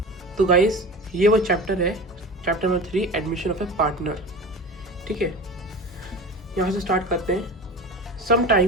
तो गाइस, ये वो चैप्टर है, chapter number 3 admission of a partner. ठीक है, यहाँ से स्टार्ट करते हैं।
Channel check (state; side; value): normal; both; correlation 0.33